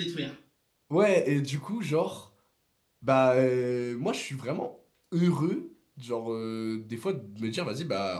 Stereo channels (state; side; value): identical; both; correlation 1.00